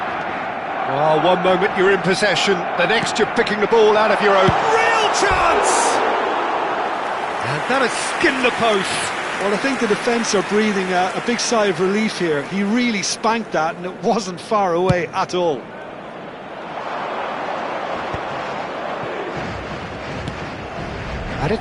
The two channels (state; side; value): identical; both; correlation 1.00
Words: Well, one moment you're in possession, the next you're picking the ball out of your own. Real chance! And that has skinned the post. Well, I think the defence are breathing a big sigh of relief here. He really spanked that, and it wasn't far away at all. And